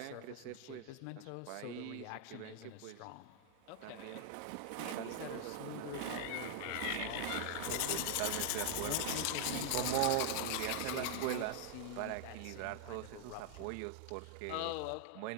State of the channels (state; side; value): different; both; correlation 0.00